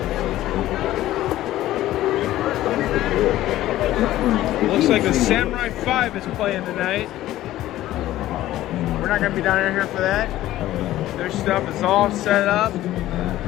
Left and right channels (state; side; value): quieter; right; 14.7 dB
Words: Looks like the Samurai 5 is playing tonight. We're not gonna be down here for that. Their stuff is all set up.